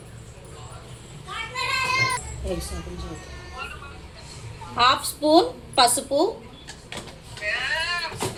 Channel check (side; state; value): both; identical; correlation 1.00